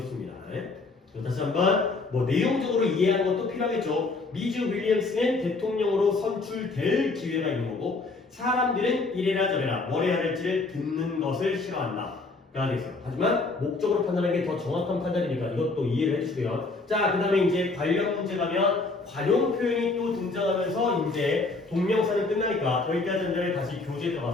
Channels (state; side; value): quieter; right; 3.6 dB